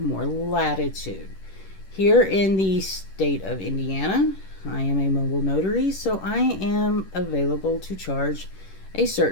latitude. Here in the state of Indiana, I am a mobile notary, so I am available to charge a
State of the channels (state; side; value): late; right; 10 ms